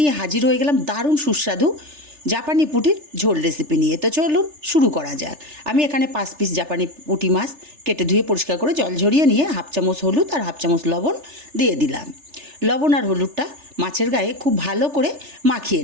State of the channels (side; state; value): left; late; 3.4 ms